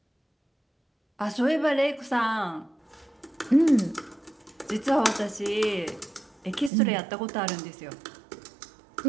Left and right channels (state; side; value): drops out; left; at 6.7 s